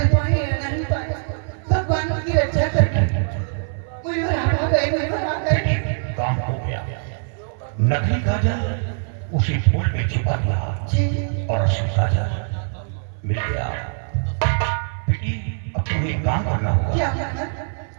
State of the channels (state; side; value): silent; left; 59 dB below the other